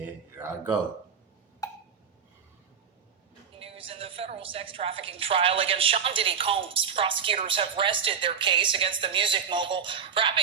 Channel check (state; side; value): quieter; left; 7.0 dB